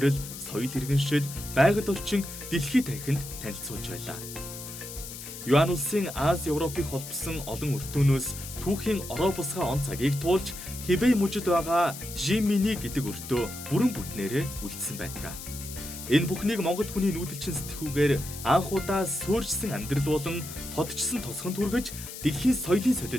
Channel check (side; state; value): left; noise; hiss, 11 dB below the sound